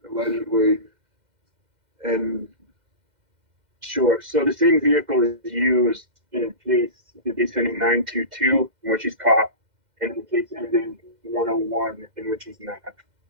allegedly, and... Sure. So the same vehicle is used in the case ending 922, in which he's caught, and the case ending 101, in which he's not.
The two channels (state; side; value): late; left; 2.1 ms